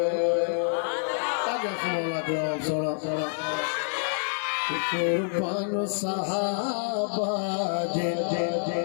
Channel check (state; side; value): silent; right; digital silence